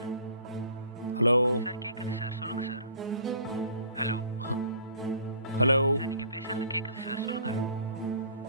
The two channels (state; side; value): inverted; both; correlation -0.50